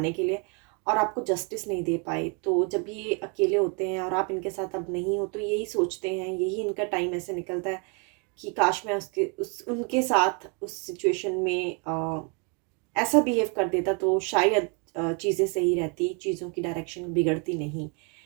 के लिए और आपको जस्टिस नहीं दे पाए। तो जब ये अकेले होते हैं और आप इनके साथ अब नहीं हो तो यही सोचते हैं, यही इनका टाइम ऐसे निकलता है कि काश मैं उसके उस उनके साथ उस सिचुएशन में ऐसा बिहेव कर देता तो शायद चीज़ें सही रहती, चीज़ों की डायरेक्शन बिगड़ती नहीं।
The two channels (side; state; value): left; quieter; 34.9 dB